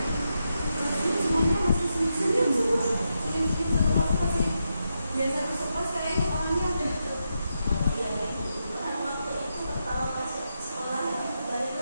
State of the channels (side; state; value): both; inverted; correlation -0.85